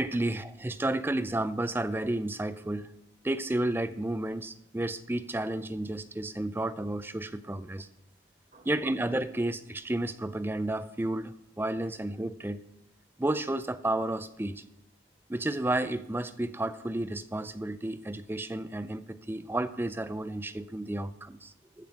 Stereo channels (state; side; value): normal; both; correlation 0.81